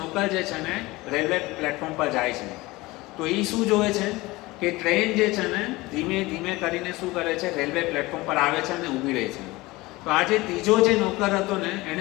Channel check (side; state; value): right; quieter; 20.9 dB